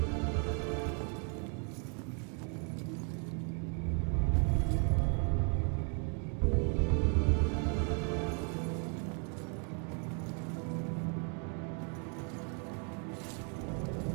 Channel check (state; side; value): quieter; left; 39.3 dB